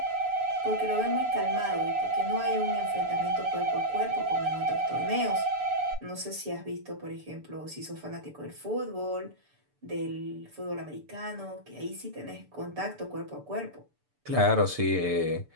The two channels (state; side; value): late; left; 6.9 ms